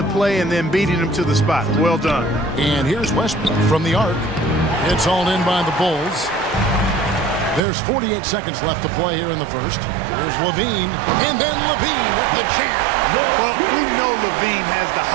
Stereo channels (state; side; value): drops out; left; at 7.6 s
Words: play and then beating him to the spot. Well done. And here's Westbrook from the arc. It's hauled in by the Bulls. There's 48 seconds left to play here in the first. Here's Levine, and then Levine with the jam. Well, we know Levine has the